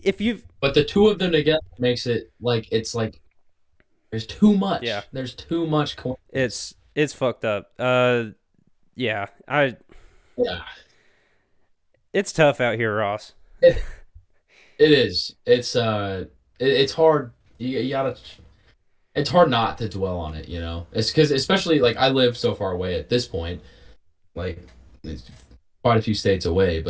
if you've But the two of them together makes it like it's like there's too yeah, much. There's too much coincidence. it's fucked up. Yeah, Yeah. it's tough out here, Ross. It, it is. It's hard. You gotta. It's hard not to dwell on it. It's because especially like I live so far away at this point, like it's quite a few states away,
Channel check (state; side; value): identical; both; correlation 1.00